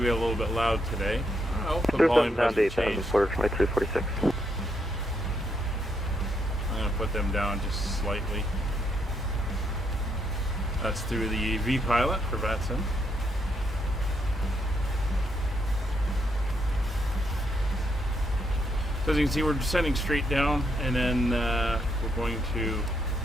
a little bit loud today. Oh, the volume down to hasn't 8,000, changed. Porter 2346. I'm going to put them down just slightly. That's through the V-Pilot for Vatson. So as you can see, we're descending straight down, and then we're going to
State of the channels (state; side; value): normal; both; correlation 0.77